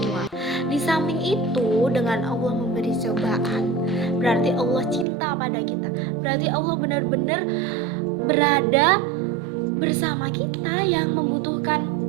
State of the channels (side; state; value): left; drops out; at 5.1 s